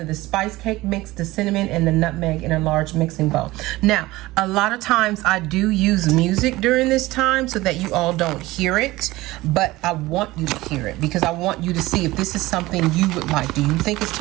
the spice cake mix, the cinnamon, and the nutmeg in a large mixing bowl. Now, a lot of times I do use music during this time so that you all don't hear it, but I want you to hear it because I want you to see if this is something you would like. Do you think it's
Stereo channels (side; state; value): left; quieter; 18.9 dB